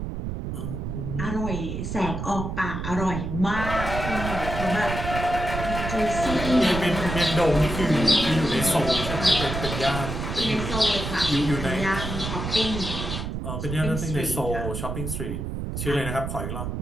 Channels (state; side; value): noise; right; rumble, 4 dB below the sound